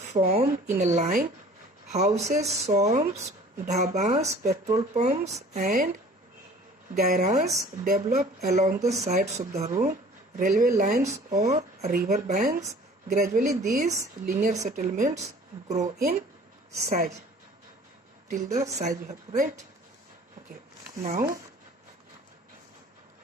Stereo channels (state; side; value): normal; both; correlation 0.49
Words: in a line. Houses, shops, dhabas, petrol pumps and garages develop along the sides of the road, railway lines or river banks. Gradually these linear settlements grow in size till the size you have to write. Okay, now